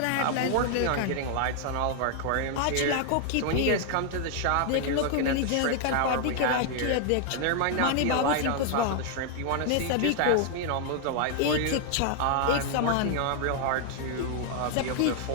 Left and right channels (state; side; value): different; both; correlation 0.00